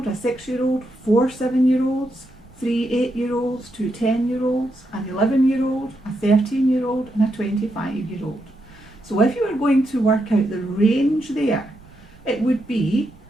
a 6-year-old, 4 7-year-olds, 3 8-year-olds, 2 10-year-olds, an 11-year-old, a 13-year-old and a 25-year-old. So if you were going to work out the range there, it would be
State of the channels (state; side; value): noise; right; rumble, 26 dB below the sound